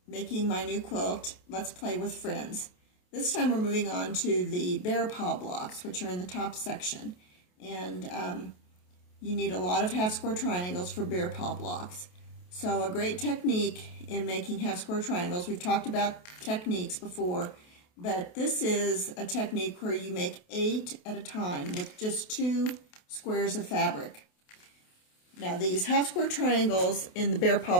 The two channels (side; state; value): right; late; 28 ms